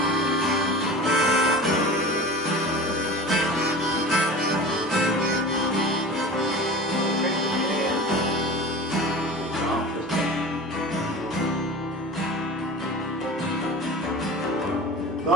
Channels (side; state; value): both; normal; correlation 0.35